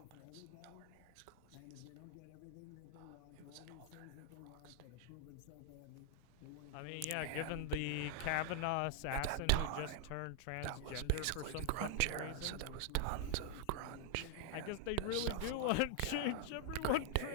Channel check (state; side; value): different; both; correlation 0.00